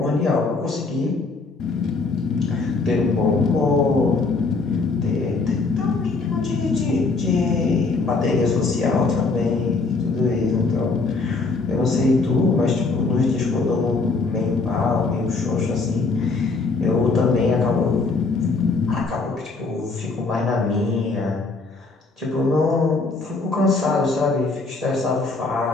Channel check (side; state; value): right; quieter; 3.9 dB